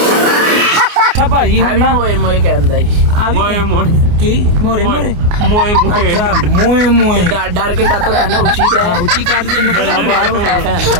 ਅੱਛਾ ਭਾਜੀ ਹੁਣ ਨਾ ਮੋਏ ਕਹਿੰਦਾ ਜੀ। ਮੋਏ ਕੀ ਮੋਰੇ ਮੋਏ ਡਰ ਕੇ ਕਾਤੋਂ ਕਹਿੰਦਾ ਉੱਚੀ ਤੇ ਉੱਚੀ ਕਰ ਕੇ ਆ ਬਾਹਰ ਬਿਠਾ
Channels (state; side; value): late; left; 29 ms